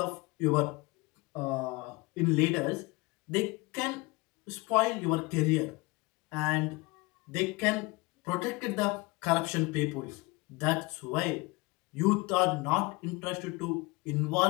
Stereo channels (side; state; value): right; quieter; 24.2 dB